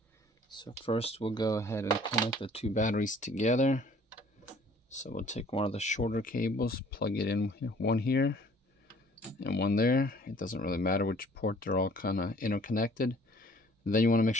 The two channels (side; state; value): both; normal; correlation 0.55